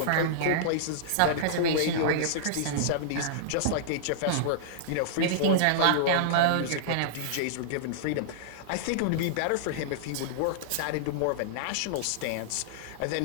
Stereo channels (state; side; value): different; both; correlation -0.02